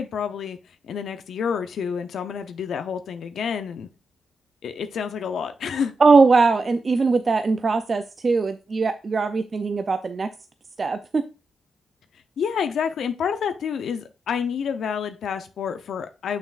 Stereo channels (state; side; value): normal; both; correlation 0.85